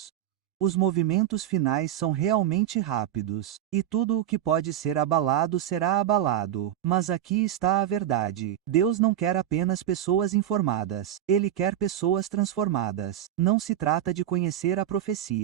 Os movimentos finais são realmente rápidos, e tudo o que pode ser abalado será abalado. Mas aqui está a verdade. Deus não quer apenas pessoas informadas. Ele quer pessoas transformadas. Não se trata de conhecer a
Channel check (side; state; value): left; quieter; 11.5 dB